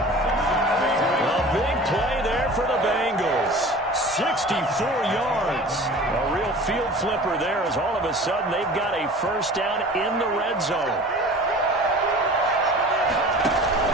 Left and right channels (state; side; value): normal; both; correlation 0.41